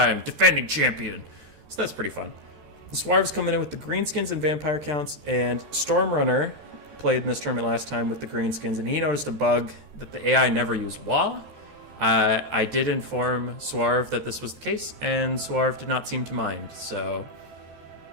defending champion. So that's pretty fun. The Swarv's coming in with the greenskins and vampire counts, and Stormrunner played in this tournament last time with the greenskins, and he noticed a bug that the AI never used Wa. I did inform Swarv that this was the case, and Swarv did not seem to mind. So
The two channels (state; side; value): late; left; 13 ms